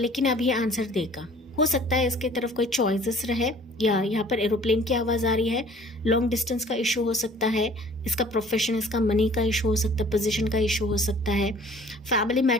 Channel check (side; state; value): both; normal; correlation 0.52